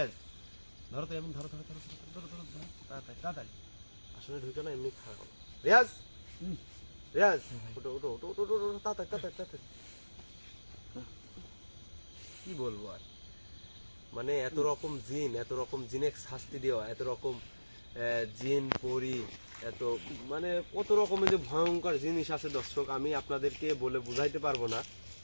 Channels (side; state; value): both; inverted; correlation -1.00